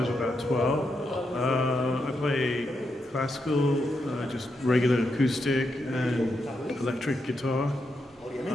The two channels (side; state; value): both; normal; correlation 0.83